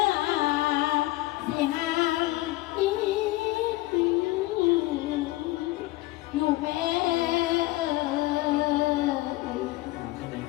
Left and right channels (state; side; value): quieter; right; 18.9 dB